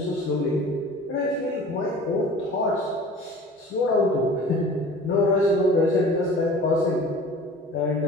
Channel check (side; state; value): both; normal; correlation 0.43